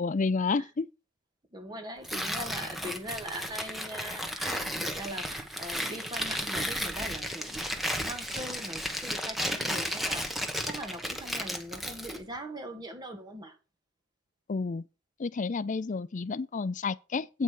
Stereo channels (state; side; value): normal; both; correlation 0.57